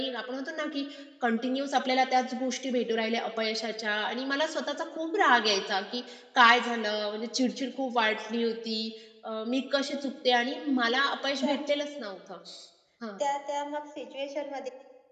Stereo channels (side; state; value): both; identical; correlation 1.00